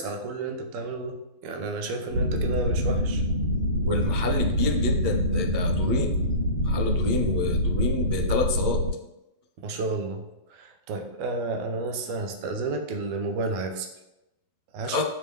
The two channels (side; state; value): left; late; 12 ms